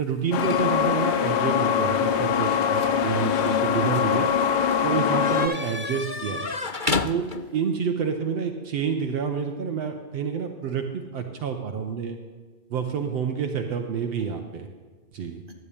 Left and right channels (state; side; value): late; left; 2.3 ms